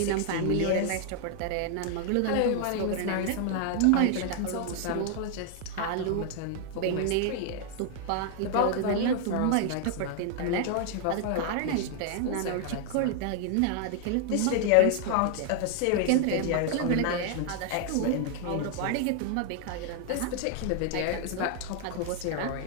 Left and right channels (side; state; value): both; different; correlation 0.00